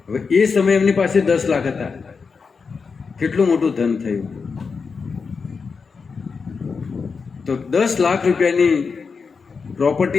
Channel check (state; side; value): quieter; right; 5.2 dB